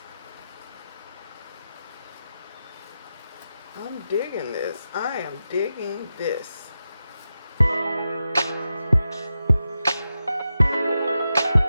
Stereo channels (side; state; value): both; inverted; correlation -0.90